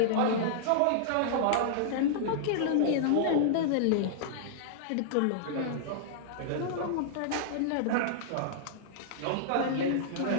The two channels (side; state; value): both; different; correlation -0.02